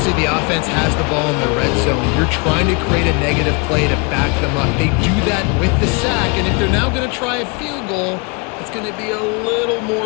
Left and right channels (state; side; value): quieter; right; 31.9 dB